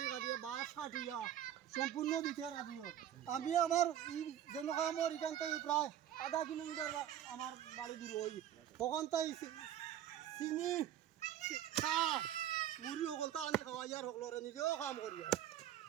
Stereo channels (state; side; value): quieter; left; 10.9 dB